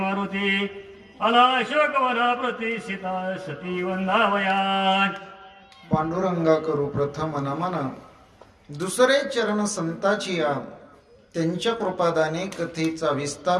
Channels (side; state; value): both; identical; correlation 1.00